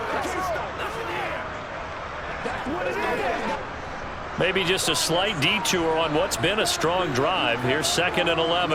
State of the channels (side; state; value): both; identical; correlation 1.00